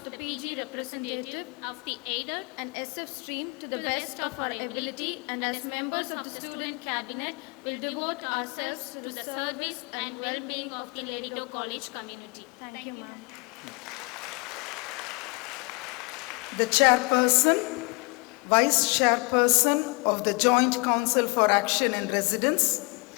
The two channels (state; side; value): quieter; right; 29.7 dB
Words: the PG representative of the aided and SF stream to the best of our ability, and as members of the Student Cabinet will devote ourselves to the service and well-being of the Lady Doak College community. Thank you, ma'am. The Chairperson, Vice Chairperson of the Joint Council for Action in Residence,